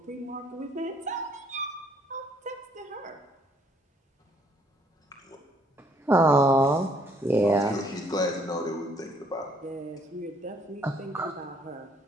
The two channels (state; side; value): normal; both; correlation 0.65